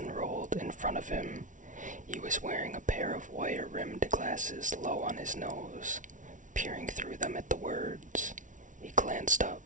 in front of him. He was wearing a pair of wire-rimmed glasses low on his nose, peering through them at the words. He glanced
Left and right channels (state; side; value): late; left; 0.37 ms